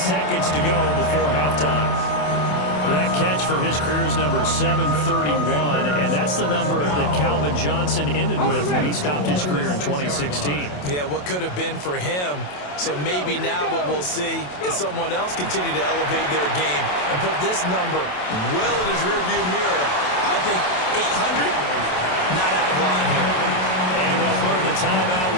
to go before halftime. That catch for his career is number 731, and that's the number that Calvin Johnson ended with when he stopped his career in 2016. Yeah, what could have been for him. So maybe now what we'll see is someone else continue to elevate their game and put this number well in his rearview mirror. I think 800, not out of line here. And they'll burn the timeout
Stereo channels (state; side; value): late; right; 27 ms